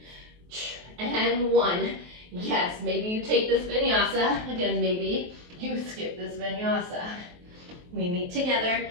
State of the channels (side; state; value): left; late; 23 ms